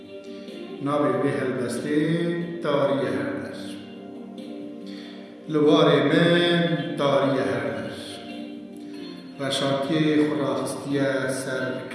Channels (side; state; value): both; identical; correlation 1.00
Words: نابی به هلبستی تاری هردر لوار من تاری هردر رشاکی خوراخستی سر